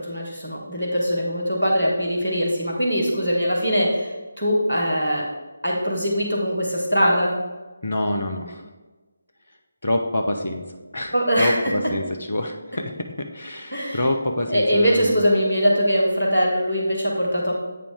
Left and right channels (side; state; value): both; inverted; correlation -0.89